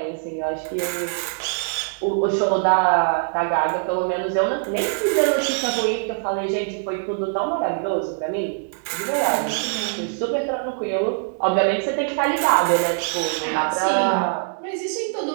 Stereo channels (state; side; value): silent; left; digital silence